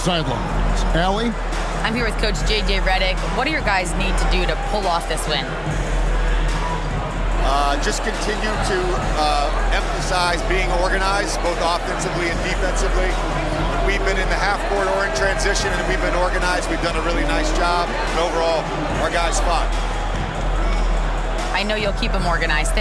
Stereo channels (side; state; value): both; identical; correlation 1.00